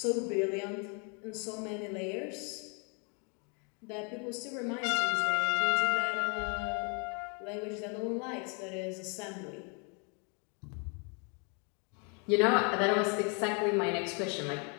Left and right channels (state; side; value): quieter; right; 35.7 dB